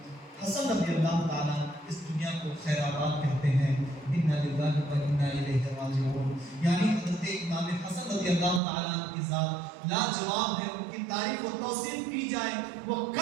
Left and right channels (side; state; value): left; drops out; at 8.6 s